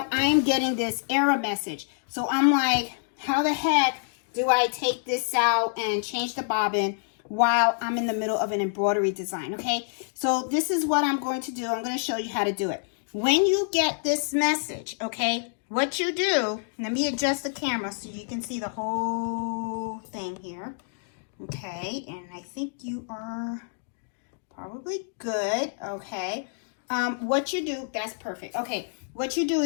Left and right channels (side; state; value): right; silent; digital silence